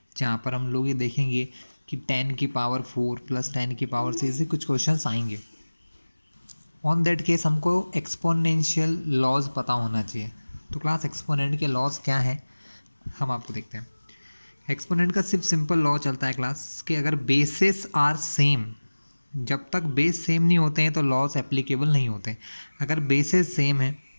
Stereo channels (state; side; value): inverted; both; correlation -1.00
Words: जहाँ पर हम लोग ये देखेंगे कि 10 की पावर 4 प्लस 10 की पावर 6 ऐसे कुछ क्वेश्चंस आएंगे। ऑन दैट केस हमको एक्सपोनेंशियल लॉज पता होना चाहिए। तो क्लास एक्सपोनेंट के लॉज क्या है हम आपको देखते हैं। एक्सपोनेंट का सिर्फ सिंपल लॉ चलता है क्लास कि अगर बेसिस आर सेम, जब तक बेस सेम नहीं होते हैं तो लॉज एप्लीकेबल नहीं होते। अगर बेसिस सेम है